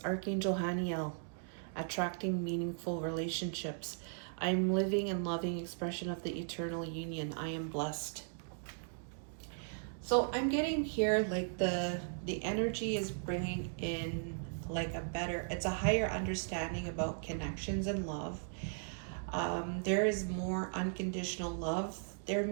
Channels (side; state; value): left; silent; digital silence